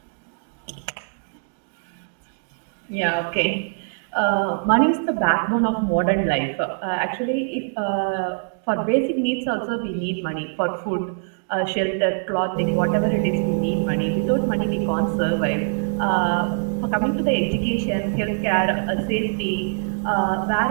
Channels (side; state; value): left; silent; digital silence